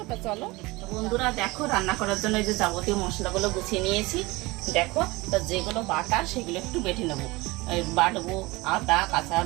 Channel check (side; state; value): left; quieter; 22.3 dB